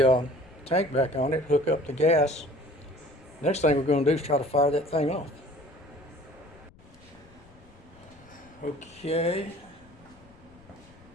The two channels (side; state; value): left; noise; rumble, 25 dB below the sound